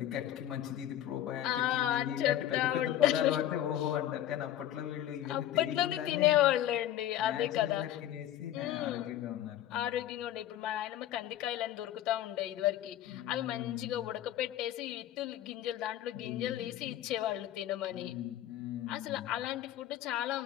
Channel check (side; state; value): right; quieter; 12.3 dB